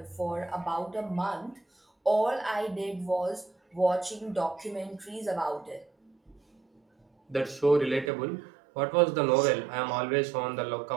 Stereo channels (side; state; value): left; drops out; at 8.1 s